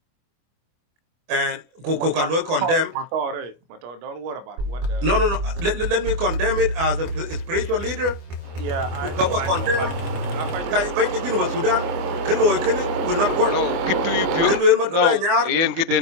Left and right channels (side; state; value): left; late; 24 ms